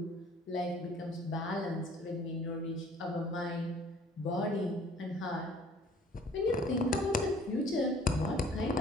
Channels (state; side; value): normal; both; correlation 0.54